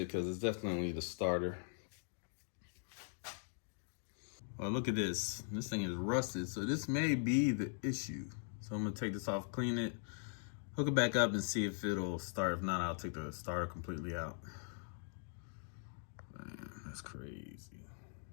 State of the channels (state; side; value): silent; right; digital silence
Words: because it's definitely the starter. Well, look at this. This thing is rusted, so this may be the issue. So I'm gonna take this off, clean it, hook it back up, and see if it'll start. If not, I'll take the starter completely out. Man, that's crazy.